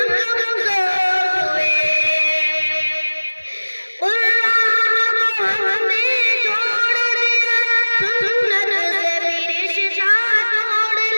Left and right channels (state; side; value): inverted; both; correlation -1.00